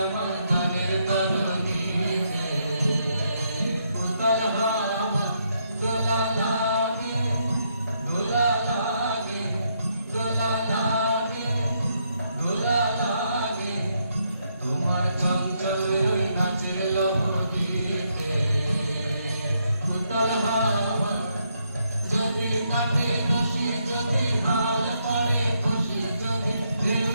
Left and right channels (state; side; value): inverted; both; correlation -0.76